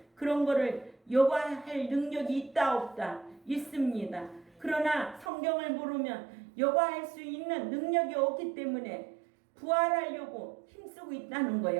그런 거를 여과할 능력이 있다 없다 있습니다. 그러나 성경을 모르면 여과할 수 있는 능력이 없기 때문에 부활하려고 힘쓰고 있다는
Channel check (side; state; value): left; drops out; at 5.3 s